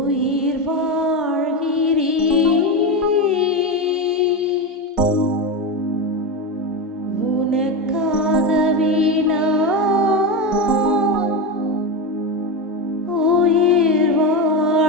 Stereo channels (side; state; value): both; normal; correlation 0.16